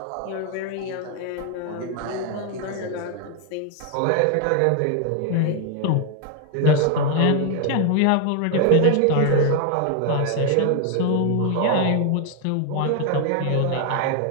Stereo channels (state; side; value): different; both; correlation 0.00